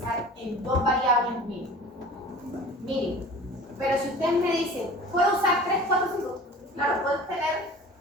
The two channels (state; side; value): normal; both; correlation 0.42